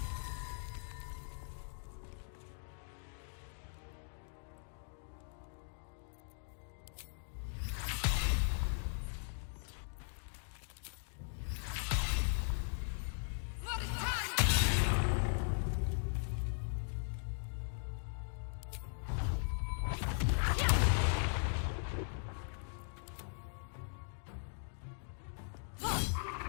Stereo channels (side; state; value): right; silent; digital silence